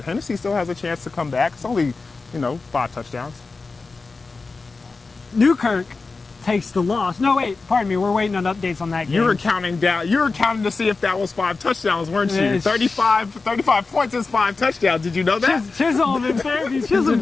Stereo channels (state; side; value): quieter; right; 4.1 dB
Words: Hennessy still has a chance to come back. It's only, 5 touchdowns. Newkirk takes the loss. No, wait, pardon me. We're waiting on updates on that game. You were counting down. You were counting to see if that was 5 touchdowns, weren't you? 35 points is 5 touchdowns. Did you know that? Chisholm and Fairview. Chisholm